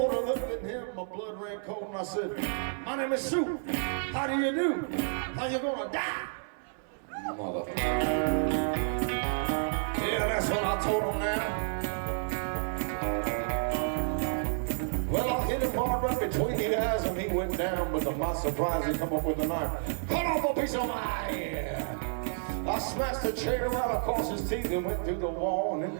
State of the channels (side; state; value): left; silent; 57 dB below the other